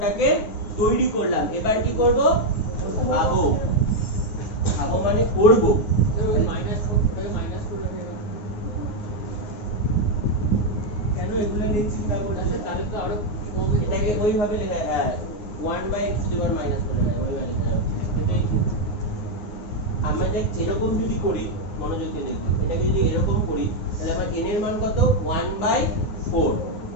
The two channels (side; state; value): right; late; 9.5 ms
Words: তৈরি করলাম। এবার কি করব, ভাবো, ভাবো মানে করব। কেন এগুলো নিয়ে চিন্তা করছো, তাহলে তো আরো কম, এটাকে ওইভাবে লেখা, হ্যাঁ 1/x two the power minus করে না, ওইভাবে লেখা যাবে। এটাই ঠিক। আমরা দেখ এরকম যদি করি, মনোযোগ দিয়ে দেখো, এটাকে যদি এরকম করি তাহলে আমার n এর মান কত, 1/4।